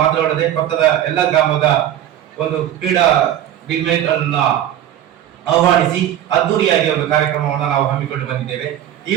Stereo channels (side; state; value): left; quieter; 11.4 dB